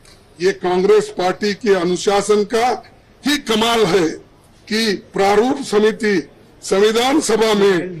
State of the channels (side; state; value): both; identical; correlation 1.00